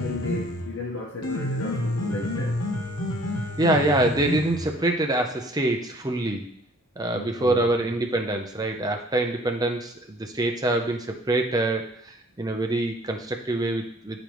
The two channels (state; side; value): normal; both; correlation 0.55